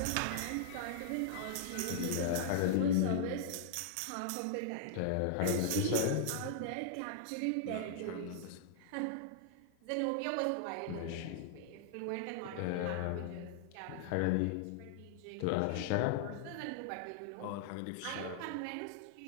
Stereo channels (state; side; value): different; both; correlation -0.01